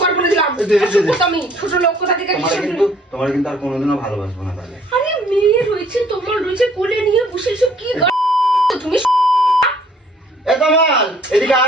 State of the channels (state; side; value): normal; both; correlation 0.60